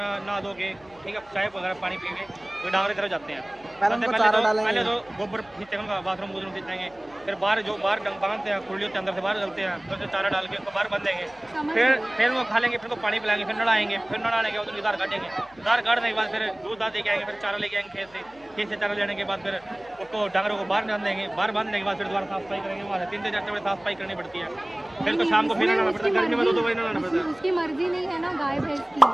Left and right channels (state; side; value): noise; left; hum, 27 dB below the sound